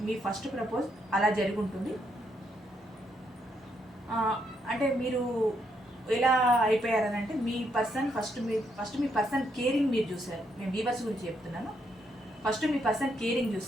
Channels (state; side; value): normal; both; correlation 0.76